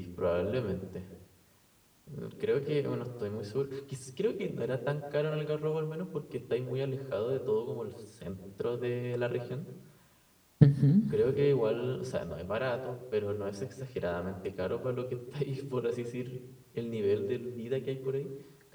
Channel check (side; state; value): both; identical; correlation 1.00